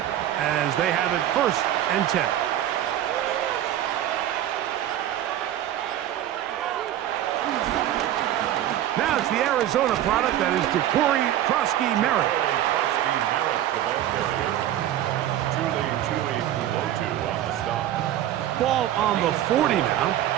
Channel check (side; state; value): left; quieter; 12.2 dB